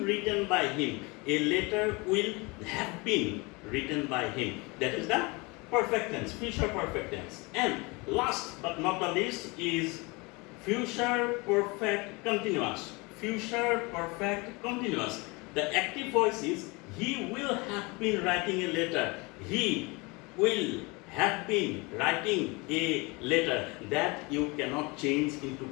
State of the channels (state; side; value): quieter; right; 26.5 dB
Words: written by him. A letter will have been written by him. That is the perfect tense, future perfect tense. And last but not the least is future perfect continuous. Future perfect continuous. The active voice is he will have been writing a letter. He will have been writing a letter. That you cannot change into